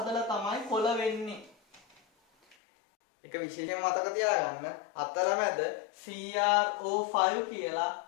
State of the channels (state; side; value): drops out; right; at 2.6 s